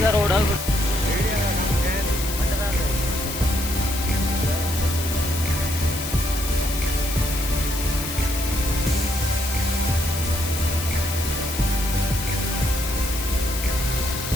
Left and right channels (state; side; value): noise; left; hiss, 7 dB below the sound